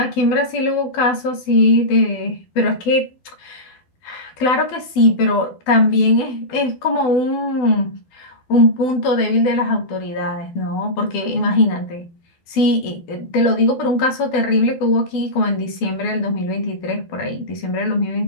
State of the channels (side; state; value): right; late; 12 ms